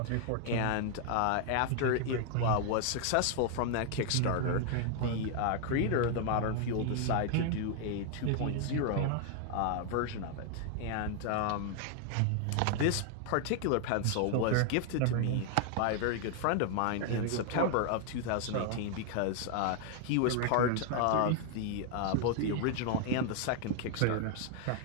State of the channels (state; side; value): different; both; correlation 0.00